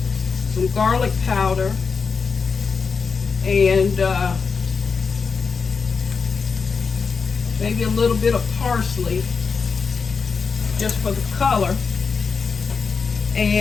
some garlic powder, and maybe a little bit of parsley just for the color.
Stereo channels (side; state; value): right; quieter; 5.3 dB